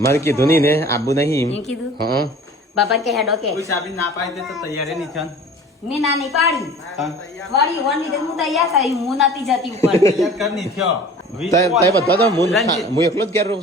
કીધું નહીં ને આબુ નહીં એમ કીધું હા બાપા કે હેડો કે કોઈ સાબી ના પાડી દે તો તૈયાર નહીં થયો મેં નાની પાડી વાળી વણ લીધે હું તૈયાર થઈ હું નથી જતી ઉપર તૈયાર કર નહીં થયો તય બધા તો હું એકલો જ ઘેર રહું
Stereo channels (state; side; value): normal; both; correlation 0.44